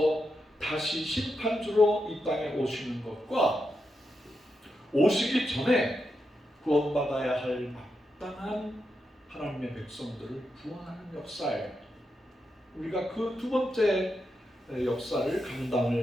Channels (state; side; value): normal; both; correlation 0.86